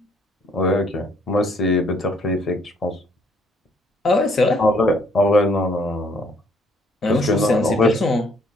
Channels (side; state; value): both; normal; correlation 0.64